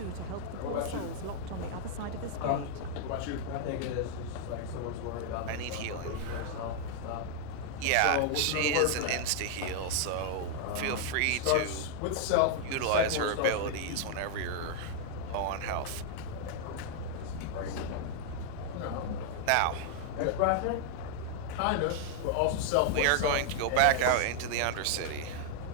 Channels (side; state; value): both; different; correlation 0.00